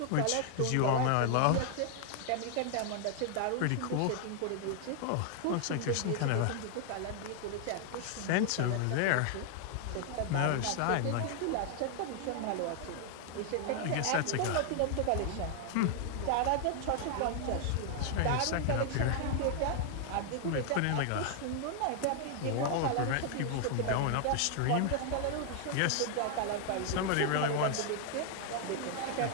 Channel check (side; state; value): both; different; correlation 0.00